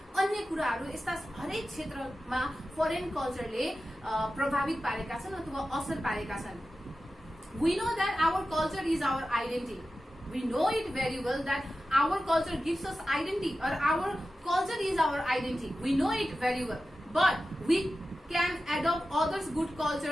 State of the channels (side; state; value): both; normal; correlation 0.93